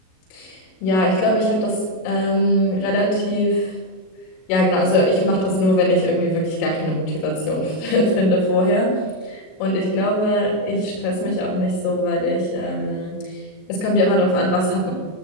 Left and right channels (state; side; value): late; right; 38 ms